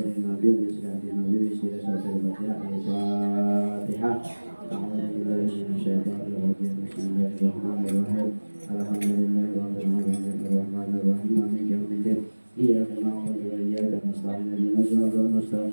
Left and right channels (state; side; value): inverted; both; correlation -1.00